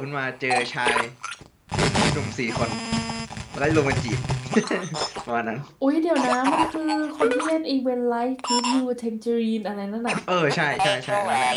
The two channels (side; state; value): both; identical; correlation 1.00